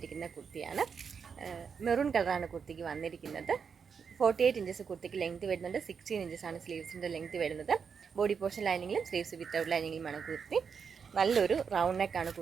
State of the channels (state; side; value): quieter; left; 6.3 dB